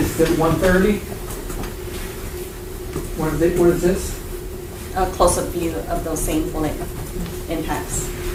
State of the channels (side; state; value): both; identical; correlation 1.00